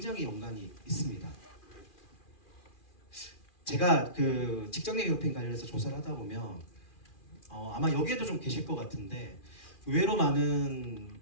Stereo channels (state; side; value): late; right; 2.4 ms